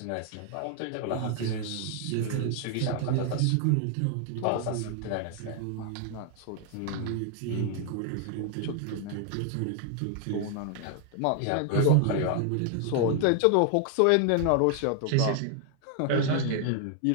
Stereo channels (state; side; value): different; both; correlation 0.00